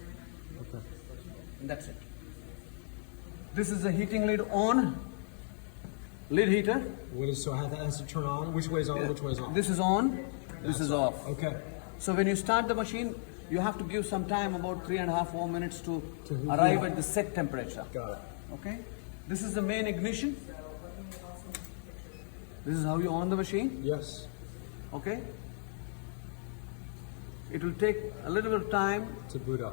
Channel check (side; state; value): right; silent; digital silence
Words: Okay. and that's it. This is the heating lid on, lid heater. What is so? How that has to turn on? Which way is on? Which way is on? This is on, this is off. Okay. So when you start the machine, you have to give some time, about 3.5 4 minutes to heat arrive it. at the set temperature. Got it. Okay? This is the main ignition. This is how you on the machine. Yes. Okay? It will take a little bit of time To boot